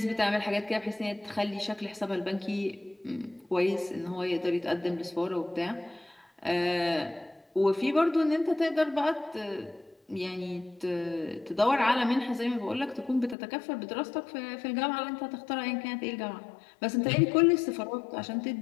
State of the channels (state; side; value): drops out; right; at 13.4 s